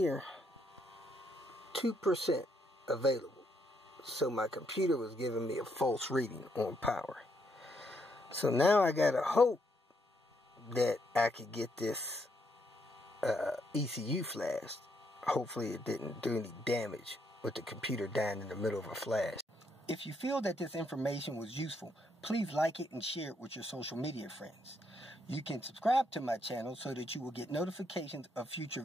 2% available. So my computer was giving me a false reading on power. So now I gotta hope that I could get this ECU flashed. Hopefully it didn't do any damage with the computer dying in the middle of a flash. If you feel that this information was useful, please like it and share it with your social media friends. You can subscribe to my channel so that you will get notifications of future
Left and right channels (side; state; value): both; normal; correlation 0.75